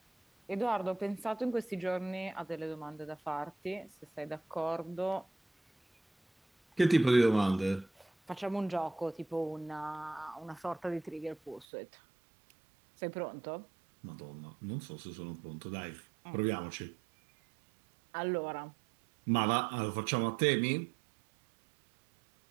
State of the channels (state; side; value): drops out; left; at 11.7 s